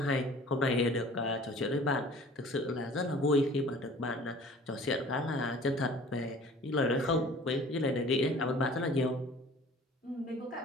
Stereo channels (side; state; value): both; normal; correlation 0.47